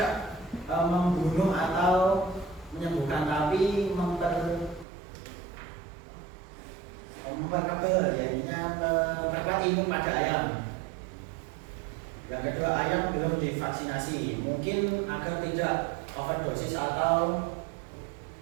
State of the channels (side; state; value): left; drops out; at 4.9 s